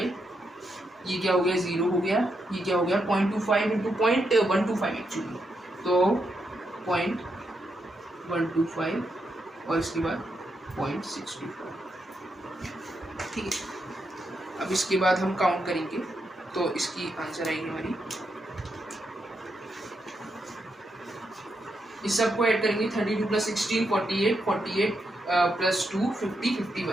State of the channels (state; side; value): normal; both; correlation 0.82